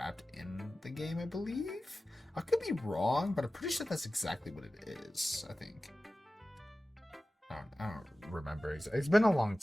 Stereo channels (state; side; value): normal; both; correlation 0.95